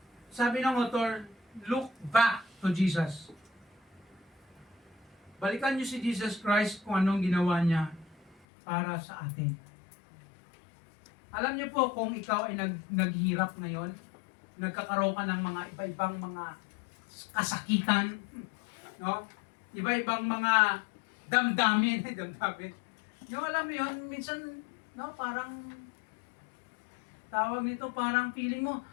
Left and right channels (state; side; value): drops out; right; at 8.3 s